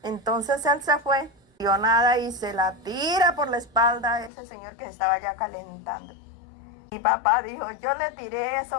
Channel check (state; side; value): drops out; right; at 4.3 s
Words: Entonces él se fue, dio nada y se la tira por la espalda a ese señor que estaba ya calentando. Mi papá dijo, yo le tiré